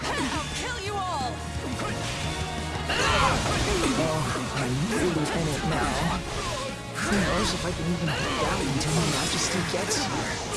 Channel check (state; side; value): identical; both; correlation 1.00